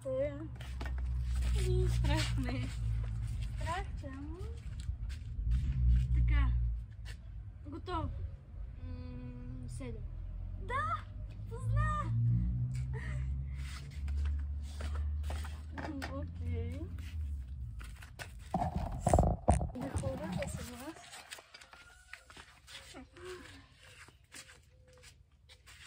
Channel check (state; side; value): identical; both; correlation 1.00